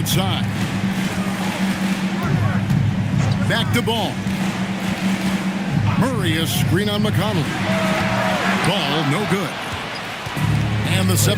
Back to Ball. Murray a screen on McConnell. Ball no good. And the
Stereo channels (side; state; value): both; identical; correlation 1.00